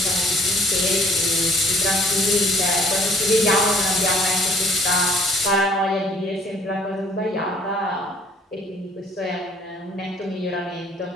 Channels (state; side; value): normal; both; correlation 0.58